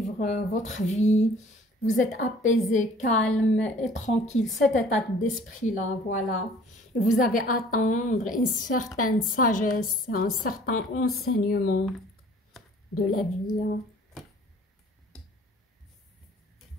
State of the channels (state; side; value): normal; both; correlation 0.53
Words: votre vie. Vous êtes apaisé, calme et tranquille. Cet état d'esprit-là, voilà. Et vous avez à attendre une certaine sagesse, un certain enseignement de la vie, hein.